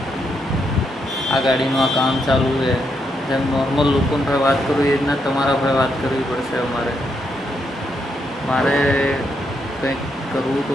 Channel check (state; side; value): normal; both; correlation 0.79